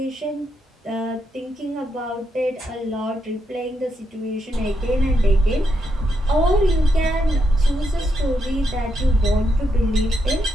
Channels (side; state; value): both; normal; correlation 0.81